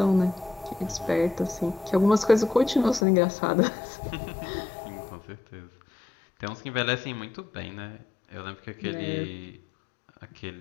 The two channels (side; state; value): right; drops out; at 3.1 s